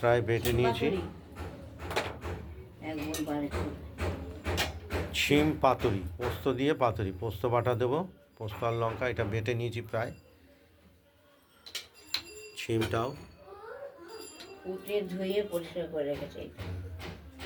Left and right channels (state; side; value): identical; both; correlation 1.00